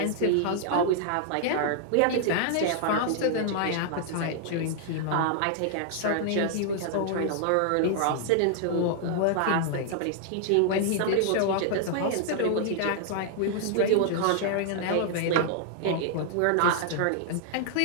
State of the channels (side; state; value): both; different; correlation -0.01